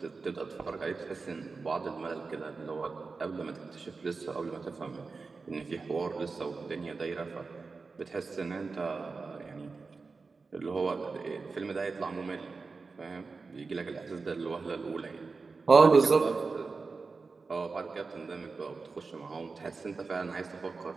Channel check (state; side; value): quieter; left; 4.3 dB